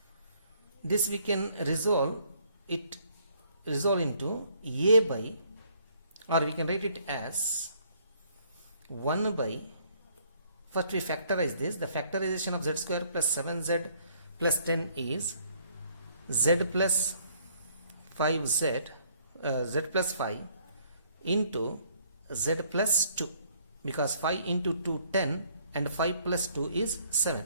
This we can resolve into a by, or we can write it as 1 by, first we factorize this. The factorization of z square plus 7z plus 10 is z plus 5z, z plus 5 into z plus 2, because 5 into 2 10 and 5 plus 2 is 7.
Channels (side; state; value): both; inverted; correlation -0.64